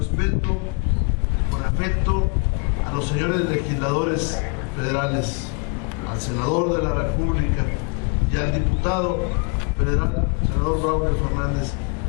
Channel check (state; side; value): quieter; right; 36.4 dB